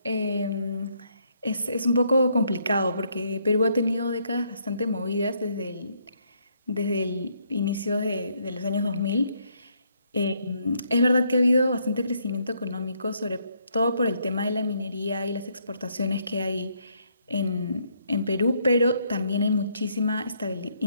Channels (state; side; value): inverted; both; correlation -0.71